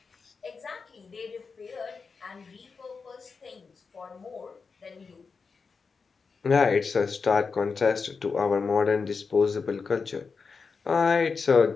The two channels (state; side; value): quieter; right; 5.0 dB